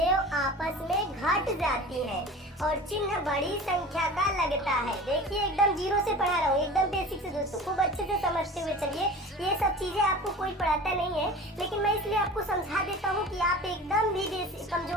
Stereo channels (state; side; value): normal; both; correlation 0.37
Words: आपस में घट जाती हैं और चिन्ह बड़ी संख्या का लगता है। देखिए एकदम 0 से पढ़ा रहा हूँ, एकदम बेसिक से दोस्तों, खूब अच्छे से समझते हुए चलिए। ये सब चीजें आपको कोई पढ़ाता नहीं है, लेकिन मैं इसलिए आपको समझा देता हूँ कि आप एकदम भी